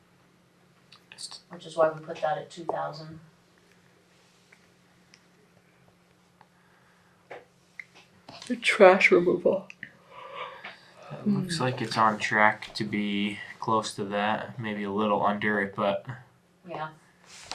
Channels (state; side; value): identical; both; correlation 1.00